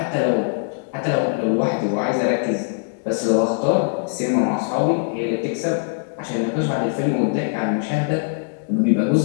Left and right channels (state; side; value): silent; right; digital silence